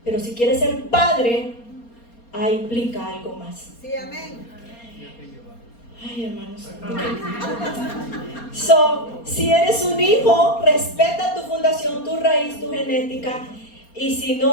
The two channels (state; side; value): late; right; 4.3 ms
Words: Pero si quieres ser padre, implica algo más. Sí, amén. Ay, hermanos. Si eres un hijo, respeta tu fundación, tu raíz, tu genética. Y si